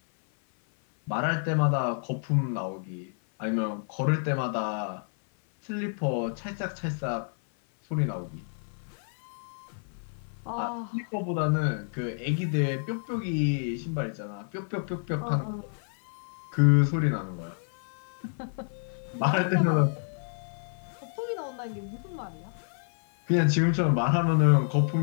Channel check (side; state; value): right; silent; 56 dB below the other